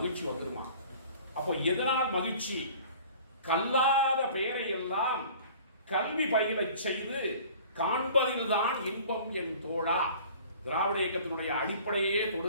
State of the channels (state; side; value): inverted; both; correlation -0.47